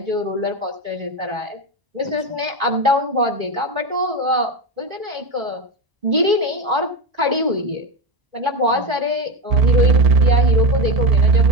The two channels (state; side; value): late; left; 1.0 ms